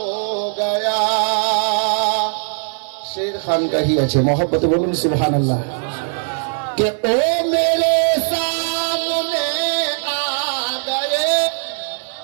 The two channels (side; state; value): left; silent; digital silence